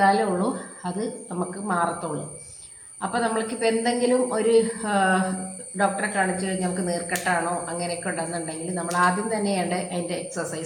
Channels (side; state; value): both; identical; correlation 1.00